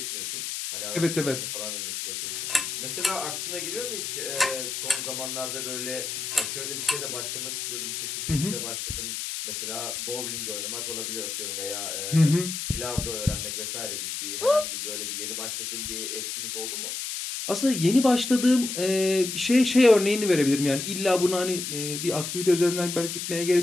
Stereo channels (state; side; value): noise; left; hiss, 4 dB below the sound